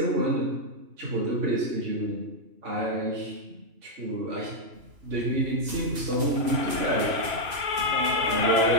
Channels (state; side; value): late; left; 2.9 ms